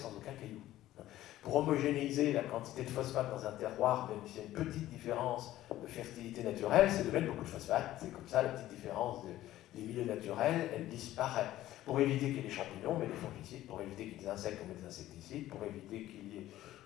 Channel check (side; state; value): right; quieter; 14.5 dB